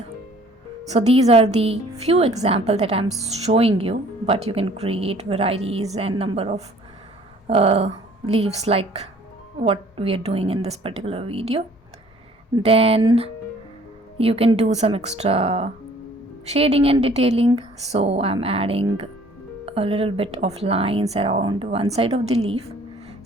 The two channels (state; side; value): normal; both; correlation 0.55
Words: So these are the few examples that I'm showing you, but you can create varieties and number of leaves like what we are doing in this particular video. Then you can do some extra shading and detailing. So I'm adding a little bit of lines around one side of the leaf.